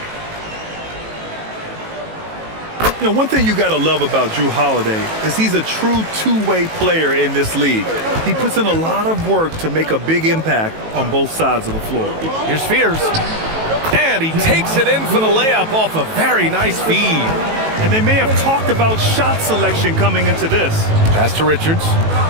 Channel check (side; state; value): left; late; 18 ms